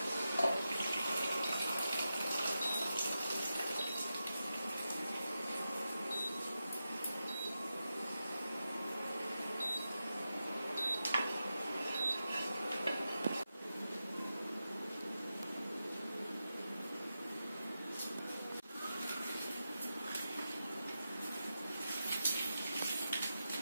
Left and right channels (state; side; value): inverted; both; correlation -0.90